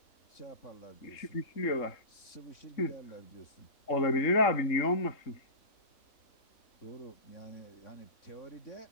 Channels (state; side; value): late; right; 3.5 ms